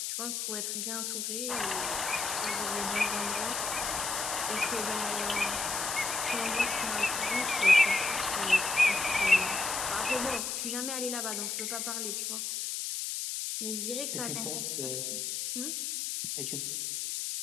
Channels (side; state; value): left; noise; hiss, 2 dB below the sound